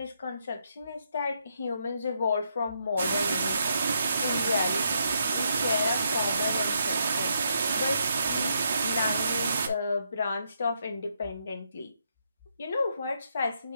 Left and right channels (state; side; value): inverted; both; correlation -0.77